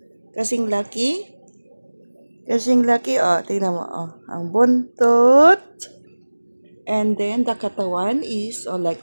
Kasing laki. Oh. Tingnan mo, oh. Ang buntot. And then, the katawan is, like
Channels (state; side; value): inverted; both; correlation -1.00